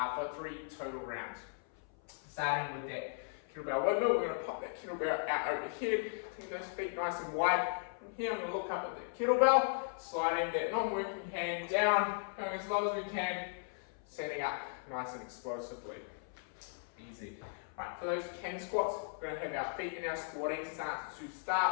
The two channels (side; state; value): right; silent; 53 dB below the other